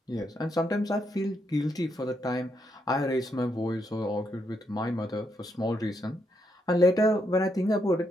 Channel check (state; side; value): normal; both; correlation 0.79